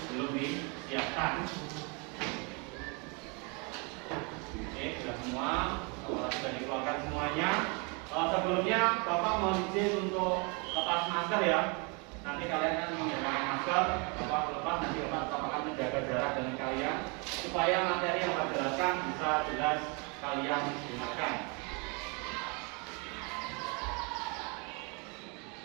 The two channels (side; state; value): left; quieter; 32.1 dB